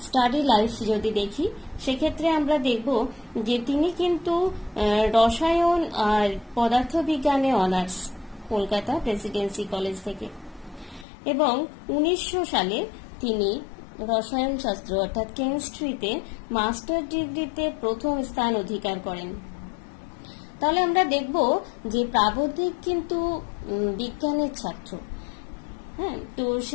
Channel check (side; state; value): right; drops out; at 11.1 s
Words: স্টাডি লাইফ যদি দেখি, সেক্ষেত্রে আমরা দেখব যে তিনি কিন্তু রসায়ন আর পদার্থবিজ্ঞানে অনার্স, কলকাতা প্রেসিডেন্সি কলেজ থেকে, এবং 1900 সালে তিনি রসায়ন শাস্ত্র অর্থাৎ কেমিস্ট্রিতে মাস্টার ডিগ্রিতে প্রথম স্থান অধিকার করেন। তাহলে আমরা দেখব যে প্রাবন্ধিক কিন্তু বিজ্ঞানের ছাত্র। হ্যাঁ, তো